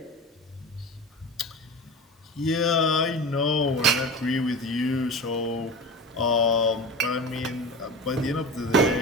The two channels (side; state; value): both; normal; correlation 0.30